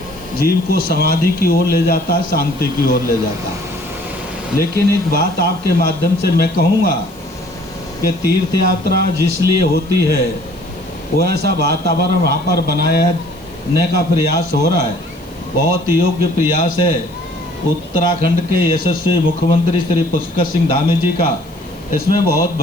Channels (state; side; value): noise; left; hiss, 27 dB below the sound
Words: जीव को समाधि की ओर ले जाता है, शांति की ओर ले जाता है। लेकिन एक बात आपके माध्यम से मैं कहूँगा कि तीर्थ यात्रा जिस लिए होती है वो ऐसा वातावरण वहाँ पर बनाने का प्रयास हो रहा है, बहुत योग्य प्रयास है। उत्तराखंड के यशस्वी मुख्यमंत्री श्री पुष्कर सिंह धामी जी का इसमें बहुत